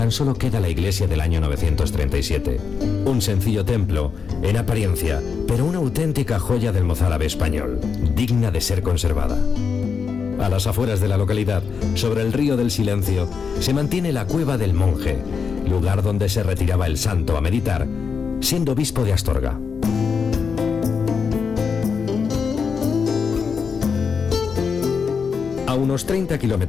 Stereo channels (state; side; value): quieter; right; 5.9 dB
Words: solo queda la iglesia del año 937. Un sencillo templo, en apariencia, pero una auténtica joya del mozárabe español, digna de ser conservada. A las afueras de la localidad, sobre el río del Silencio, se mantiene la Cueva del Monje, lugar donde se retiraba el santo a meditar, siendo obispo de Astorga. A unos 30